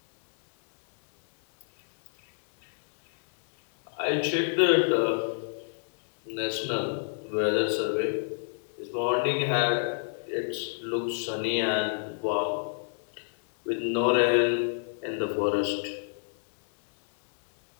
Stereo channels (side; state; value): right; silent; 59 dB below the other